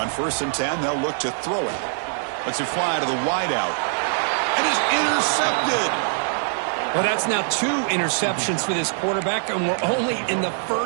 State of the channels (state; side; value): silent; left; 63 dB below the other